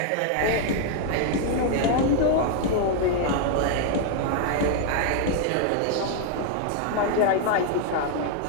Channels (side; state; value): both; different; correlation 0.00